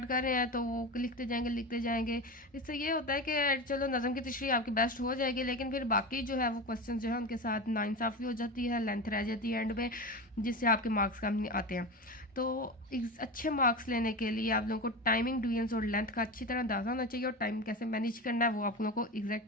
कर रहे हैं तो वो लिखते जाएंगे। इससे ये होता है कि चलो नज़म की तशरीह आपकी बेस्ट हो जाएगी, लेकिन फिर बाकी जो है वो क्वेश्चन जो है उनके साथ नाइंसाफ़ी हो जाती है, लेंथ रह जाती है एंड में, जिससे आपके मार्क्स कम नहीं आते हैं। तो अच्छे मार्क्स लेने के लिए आप लोगों को टाइमिंग, डिवीजन्स और लेंथ का अच्छी तरह अंदाजा होना चाहिए, और टाइम कैसे मैनेज करना है वो आप लोगों को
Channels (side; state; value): both; normal; correlation 0.24